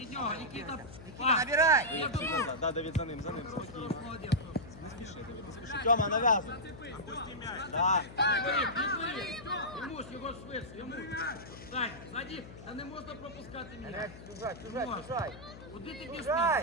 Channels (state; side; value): noise; left; hum, 15 dB below the sound